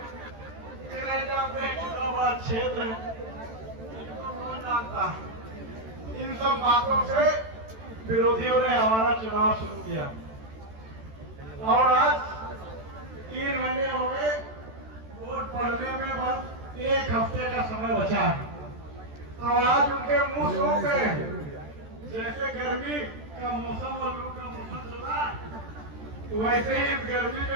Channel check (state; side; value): late; left; 13 ms